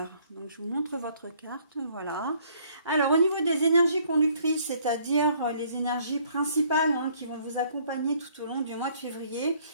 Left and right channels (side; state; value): both; inverted; correlation -0.62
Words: Donc je vous montre votre carte, voilà. Alors au niveau des énergies conductrices, c'est-à-dire les énergies principales qui vont vous accompagner tout au long du mois de février,